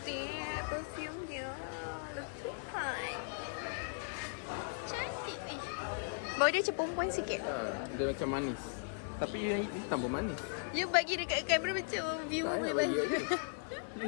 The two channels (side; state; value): right; silent; 53 dB below the other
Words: perfume dia. Letupan. Cantik. Bau dia macam perempuan sikit. Dia macam manis. Tapi yang hitam pun manis. You bagi dekat kamera macam view Tak boleh payah bagi bagi. Ni